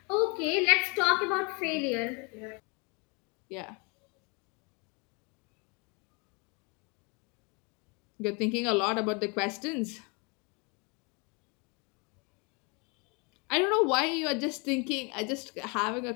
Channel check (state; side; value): quieter; right; 31.3 dB